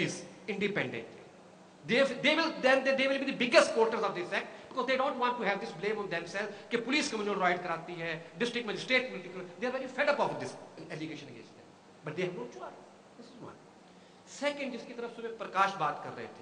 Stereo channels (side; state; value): both; identical; correlation 1.00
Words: independently. They will be the biggest supporters of this act, because they don't want to have this blame on themselves कि पुलिस communal right कराती है, district magistrate political, they are very fed up of this allegation against them, but they have no choice. This is one. Second, जिसकी तरफ सुबह प्रकाश बात कर रहे